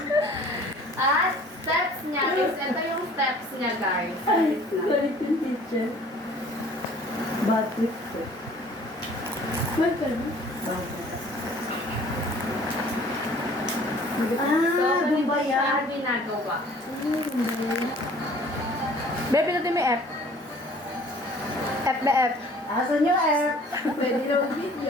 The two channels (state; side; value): normal; both; correlation 0.51